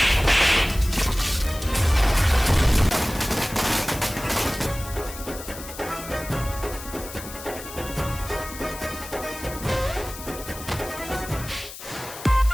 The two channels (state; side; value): noise; left; hiss, 13 dB below the sound